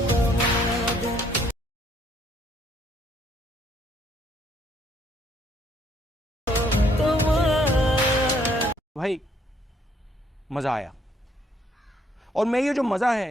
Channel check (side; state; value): both; normal; correlation 0.67